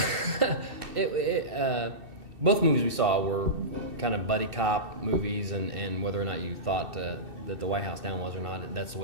Both movies we saw were kind of buddy cop movies, and whether or not you thought that the White House Down was or not, that's the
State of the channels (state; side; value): late; left; 2.6 ms